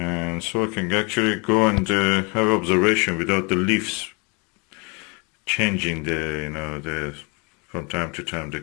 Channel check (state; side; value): quieter; right; 31.4 dB